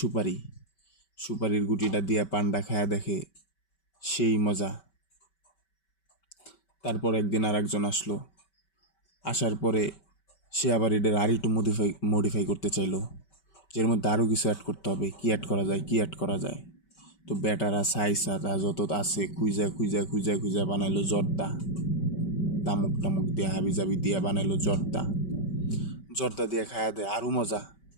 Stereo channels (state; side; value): late; right; 5.2 ms